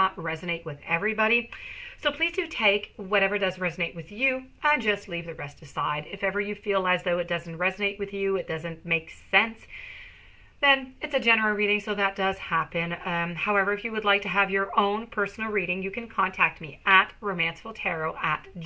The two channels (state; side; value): identical; both; correlation 1.00